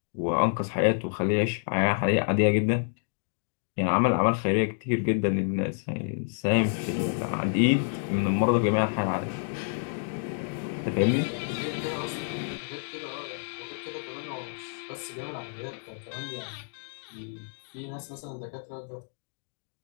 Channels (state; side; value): silent; right; digital silence